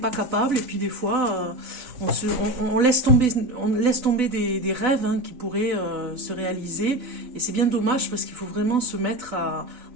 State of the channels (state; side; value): late; left; 4.0 ms